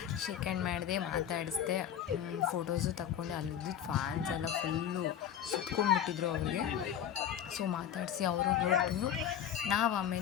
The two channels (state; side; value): quieter; right; 9.7 dB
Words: ಶೇಕ್ ಹ್ಯಾಂಡ್ ಮಾಡಿದೆ, ಮಾತಾಡಿಸ್ದೆ, ಫೋಟೋಸು ತಗೊಂಡೆ. ಅಲ್ಲಿದ್ದಿದ್ದು ಫ್ಯಾನ್ಸ್ ಎಲ್ಲ ಫುಲ್ಲು ಸುತ್ಕೊಂಡ್ಬಿಟ್ಟಿದ್ರು ಅವ್ರಿಗೆ. ಸೊ ಮಾತಾಡಿಸಿ ಅವರು ಹೊರಟು ನಾವು